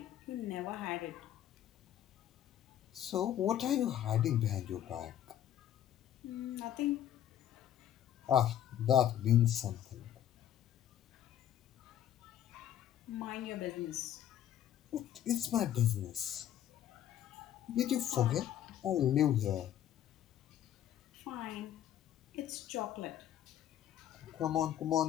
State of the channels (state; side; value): quieter; right; 11.1 dB